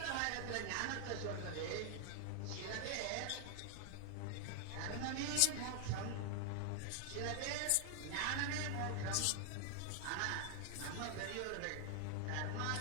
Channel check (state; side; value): different; both; correlation 0.00